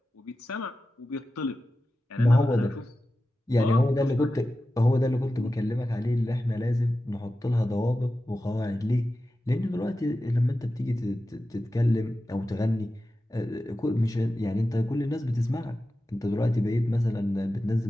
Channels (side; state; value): both; normal; correlation 0.93